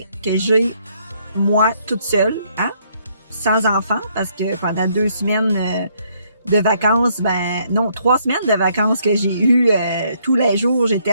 que j'ai moi toute seule, hein, sans enfant, parce que pendant 2 semaines de vacances, 3 semaines de vacances que j'ai eu tous les jours, j'étais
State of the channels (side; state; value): both; inverted; correlation -0.70